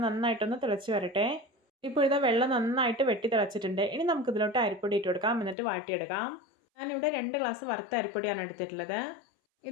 നന്നായിട്ടൊന്ന് തിളച്ച് വരട്ടെ. ഇപ്പോൾ ഇതാ വെള്ളം നന്നായിട്ട് വെട്ടി തിളച്ചിട്ടുണ്ട്. ഇനി നമുക്കിതിലോട്ട് അരിപ്പൊടി ഇട്ട് കൊടുക്കാം. എന്നിട്ട് വാട്ടിയെടുക്കാം. ഞാനിവിടെ 2 ഗ്ലാസ് വറുത്ത അരിപ്പൊടിയാണ് എടുത്തിട്ടുള്ളത്.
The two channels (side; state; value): right; drops out; at 5.6 s